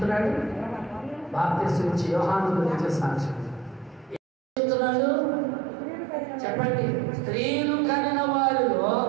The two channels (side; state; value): left; drops out; at 4.2 s